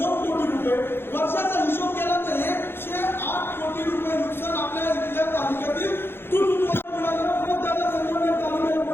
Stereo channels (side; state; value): right; late; 0.11 ms